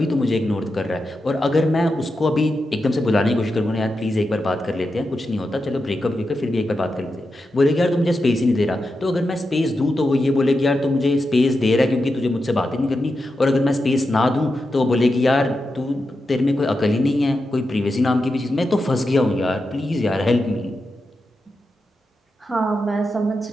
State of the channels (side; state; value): both; normal; correlation 0.89